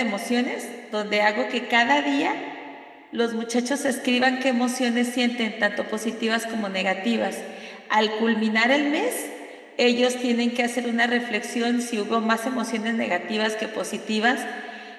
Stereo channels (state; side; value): identical; both; correlation 1.00